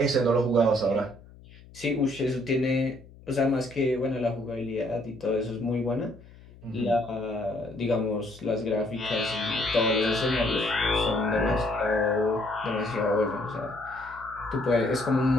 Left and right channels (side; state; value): left; noise; hum, 22 dB below the sound